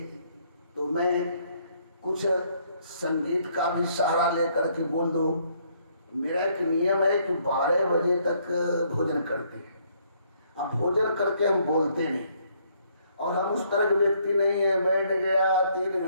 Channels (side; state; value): both; inverted; correlation -0.68